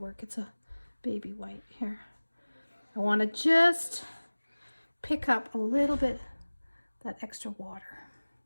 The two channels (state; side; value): inverted; both; correlation -1.00